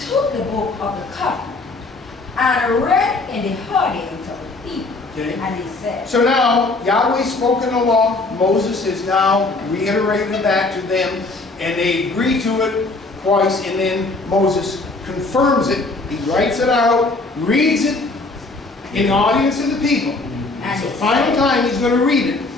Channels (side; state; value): right; quieter; 3.3 dB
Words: the book of the covenant and read in the audience of the people. Okay. And he said, So now, Yahweh's spoken the law. Moses has now reiterated that to them, and they agree to it twice, and then Moses confirms it. He writes it out, reads it in the audience of the people. And It's the he final said, time he's going to read it,